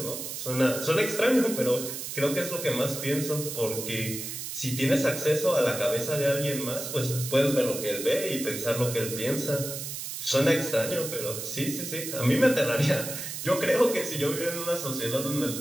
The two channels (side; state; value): right; noise; hiss, 7 dB below the sound